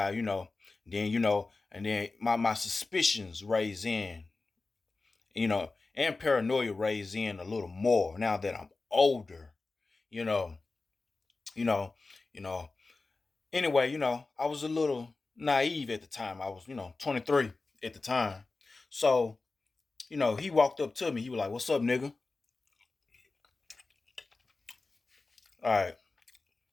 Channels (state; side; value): quieter; right; 3.7 dB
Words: and then my suspicions raise in, and paranoia raise in a little more now that I'm older, you know, you know, you know. Anyway, I was a little naive at the time. I was, 23 at the time. So, he walked up to me. He was like, "What's up, nigga?" All right,